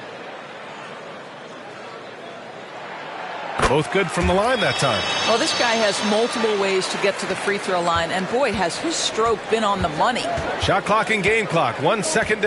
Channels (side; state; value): both; identical; correlation 1.00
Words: Both good from the line that time. Well, this guy has multiple ways to get to the free throw line, and boy, has his stroke been on the money. Shot clock and game clock, 1 second